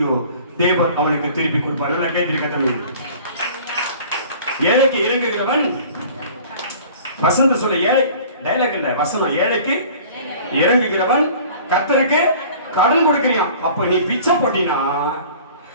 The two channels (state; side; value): inverted; both; correlation -0.46